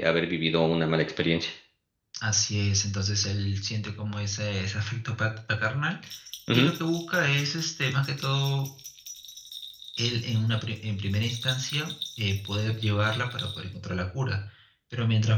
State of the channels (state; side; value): identical; both; correlation 1.00